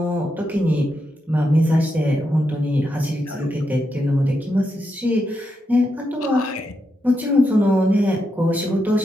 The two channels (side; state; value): both; normal; correlation 0.84